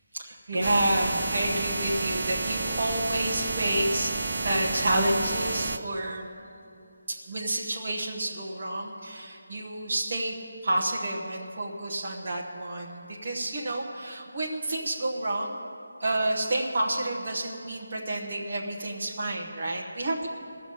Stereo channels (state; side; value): inverted; both; correlation -0.89